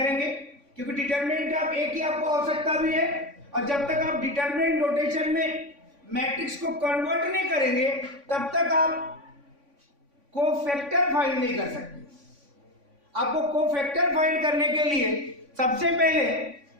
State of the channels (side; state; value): left; late; 3.5 ms